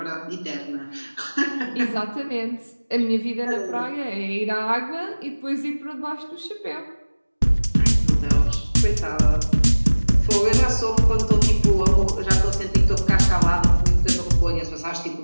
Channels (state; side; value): inverted; both; correlation -1.00